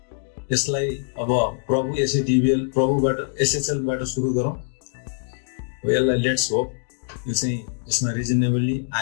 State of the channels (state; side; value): silent; right; digital silence